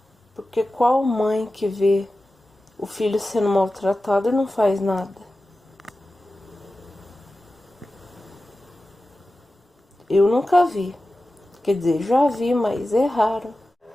Porque qual mãe que vê o filho sendo maltratado e não faz nada? Eu nunca vi. Quer dizer, já vi, mas é raro.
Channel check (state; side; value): normal; both; correlation 0.94